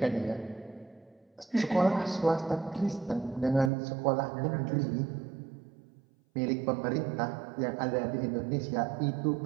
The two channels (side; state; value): left; drops out; at 3.7 s